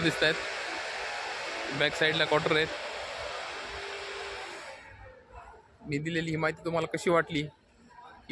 दिसत आहेत. बॅक साईडला क्वार्टर आहेत. मी दिलेली ही माहिती तुम्हाला कशी वाटली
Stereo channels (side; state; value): both; identical; correlation 1.00